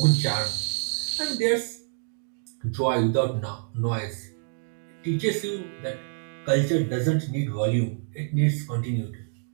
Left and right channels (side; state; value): left; silent; 60 dB below the other